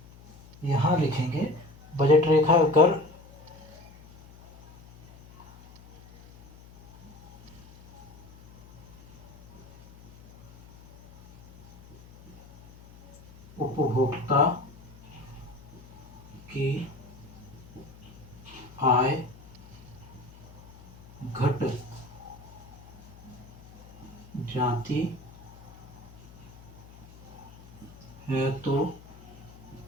यहाँ लिखेंगे। बजट रेखा अगर उपभोक्ता की आय घट जाती है तो,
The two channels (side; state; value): left; noise; hum, 21 dB below the sound